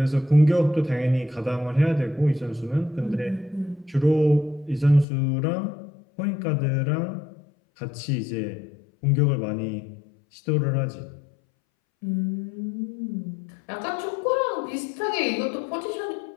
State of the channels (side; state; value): right; drops out; at 5.1 s